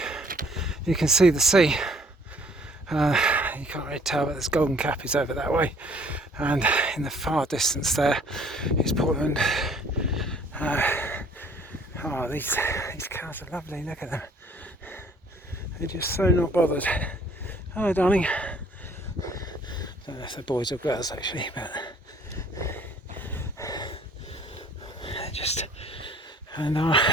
you can see the sea. You can't really tell, but this Golden Cap is over that way, and in the far distance there is Portland. Oh, these cows are lovely. Look at them. They're just so not bothered. Hello, darling. I don't know if they're boys or girls actually, but just. And our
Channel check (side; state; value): both; normal; correlation 0.57